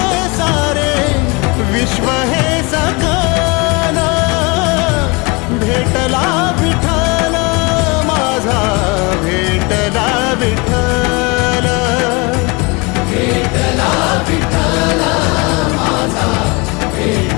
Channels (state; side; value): quieter; right; 27.4 dB